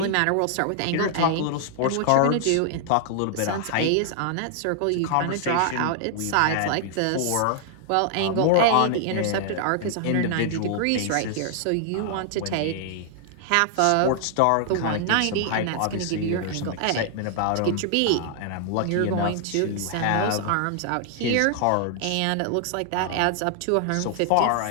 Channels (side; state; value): both; different; correlation 0.00